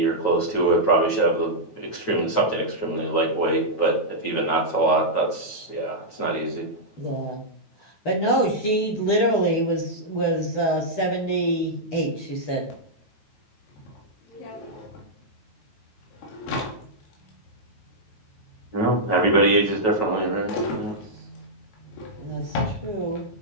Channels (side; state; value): right; late; 9.2 ms